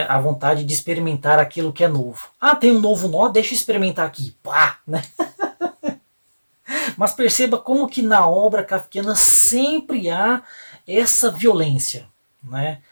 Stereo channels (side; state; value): both; inverted; correlation -1.00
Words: a vontade de experimentar aquilo que é novo. Tem um novo nó, deixa eu experimentar aqui. Pá! Né? Mas perceba como que na obra kafkiana sempre há essa violência. Né?